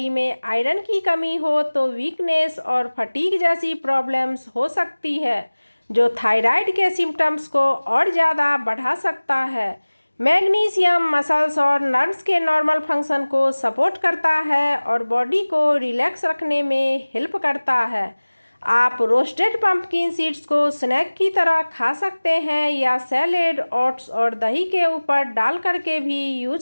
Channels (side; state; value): both; inverted; correlation -1.00